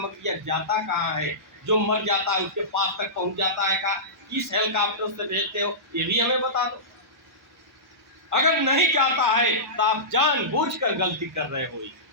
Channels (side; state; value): both; normal; correlation -0.19